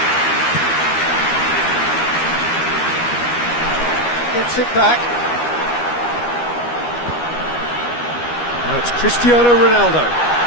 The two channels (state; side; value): late; right; 13 ms